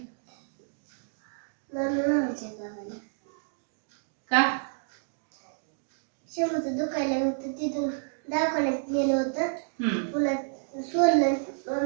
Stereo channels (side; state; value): left; silent; digital silence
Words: मामाच्या गावाला. का? शेवटचं दुखायला होतं तिथून दवाखान्यात नेलं होतं. पुन्हा सोडलं